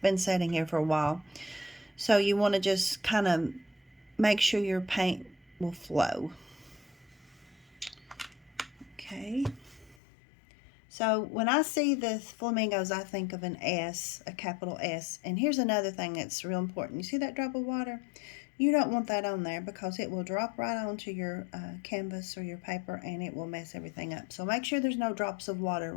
sitting here for a while. So you want to just kind of make sure your paint will flow. Okay. So when I see the flamingos, I think of an S, a capital S. And here's another thing that's real important. You see that drop of water? You don't want that on there because it will drop right onto your canvas or your paper, and it will mess everything up. So make sure there's no drops of water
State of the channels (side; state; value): right; drops out; at 10.0 s